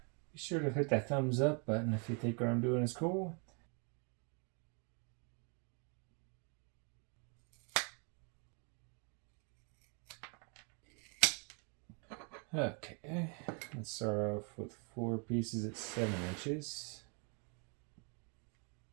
Be sure to hit that thumbs up button if you think what I'm doing is cool. Okay, let's start off with 4 pieces at 7 inches.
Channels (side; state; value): left; quieter; 36.1 dB